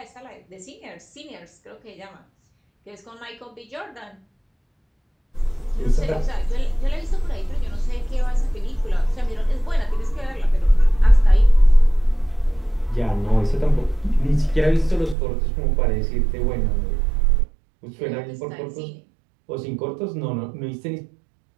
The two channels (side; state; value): left; drops out; at 15.2 s